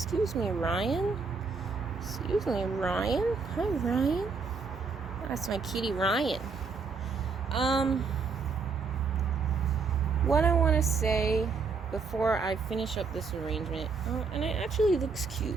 me, Ryan. Hi Ryan. That's my kitty Ryan. What I want to say before I finish up this arrangement, and it actually looks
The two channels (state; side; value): quieter; left; 4.9 dB